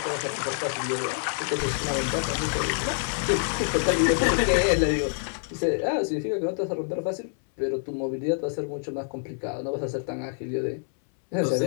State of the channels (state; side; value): silent; right; 60 dB below the other